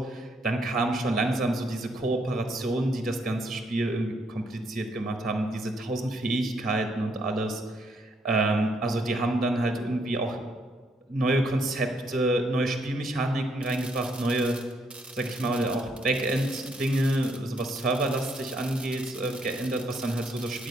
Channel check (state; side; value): normal; both; correlation 0.73